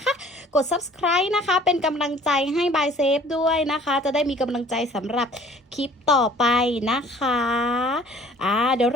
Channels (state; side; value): normal; both; correlation 0.52